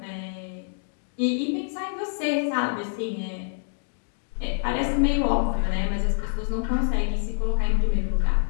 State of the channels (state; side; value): silent; right; digital silence